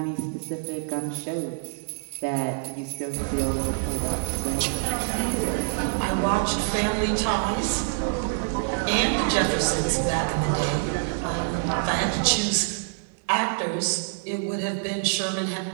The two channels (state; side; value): silent; left; digital silence